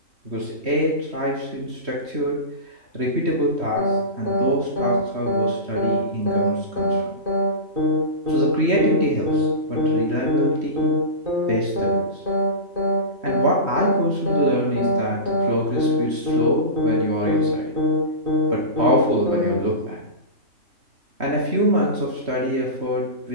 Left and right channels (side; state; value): left; late; 3.1 ms